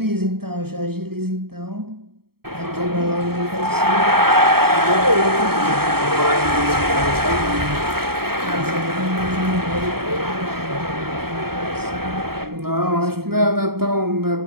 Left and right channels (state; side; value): late; left; 0.95 ms